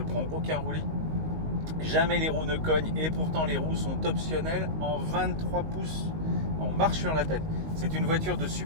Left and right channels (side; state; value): left; late; 19 ms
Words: aucun roulis, jamais les roues ne cognent, et pourtant les roues sont optionnelles en 23 pouces, on marche sur la tête. C'est une voiture de